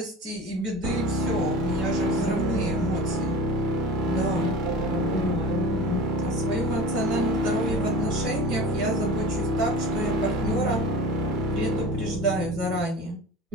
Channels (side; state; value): both; normal; correlation 0.36